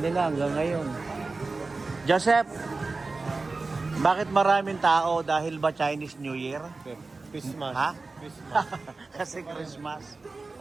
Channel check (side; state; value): left; quieter; 3.7 dB